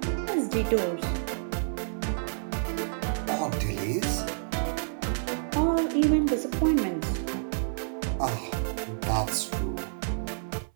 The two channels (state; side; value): silent; left; 59 dB below the other